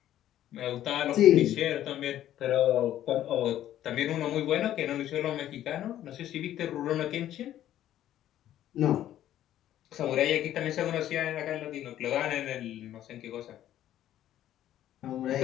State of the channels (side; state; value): right; quieter; 12.2 dB